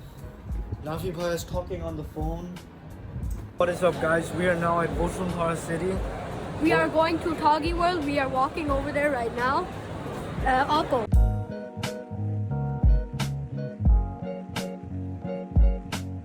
Nafi Bhai is talking on the phone. What is up, guys? We are now at Bashundhara City. We are going to Toggi World. We are walking over there right now. Alco.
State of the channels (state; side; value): identical; both; correlation 1.00